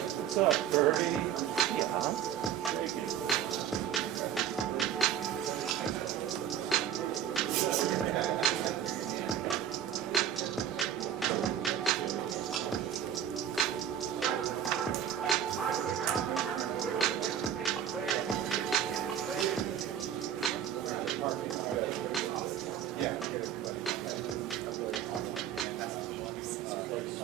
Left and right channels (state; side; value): quieter; left; 9.7 dB